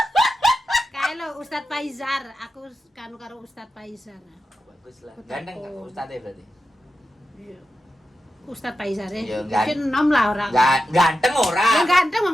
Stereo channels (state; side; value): normal; both; correlation 0.90